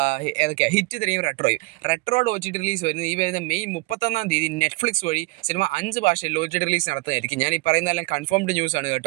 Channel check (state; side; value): quieter; left; 25.1 dB